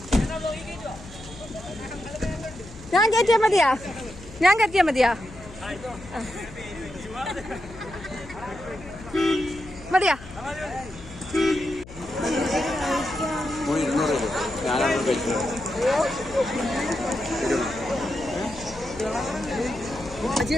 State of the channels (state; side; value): noise; left; hum, 17 dB below the sound